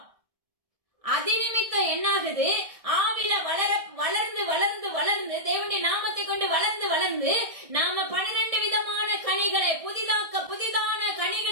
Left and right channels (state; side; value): late; left; 1.6 ms